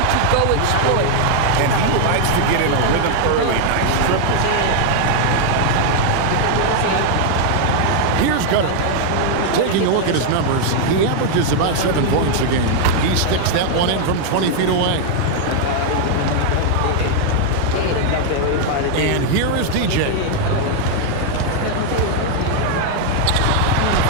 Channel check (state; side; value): different; both; correlation 0.00